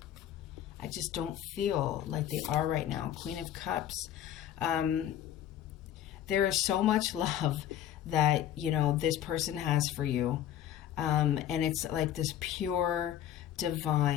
I just don't feel like they are right now. Queen of Cups. There is so much love that, this person has for you. And it's like this pure,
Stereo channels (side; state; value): right; quieter; 11.2 dB